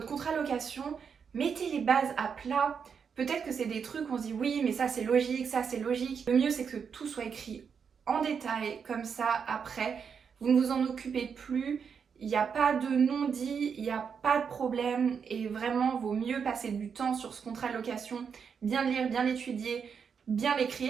contrat de location, mettez les bases à plat. Peut-être que c'est des trucs où on se dit oui mais ça c'est logique, ça c'est logique. Le mieux c'est que tout soit écrit en détail, comme ça après, vous ne vous en occupez plus. Il n'y a pas de non-dit, il n'y a pas de problème et vraiment vaut mieux passer du temps sur ce contrat de location, bien le lire, bien l'étudier, bien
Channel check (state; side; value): quieter; left; 6.6 dB